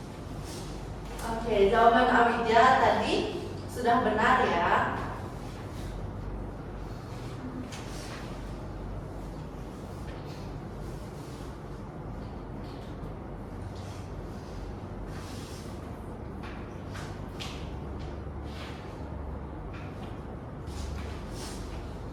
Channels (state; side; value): identical; both; correlation 1.00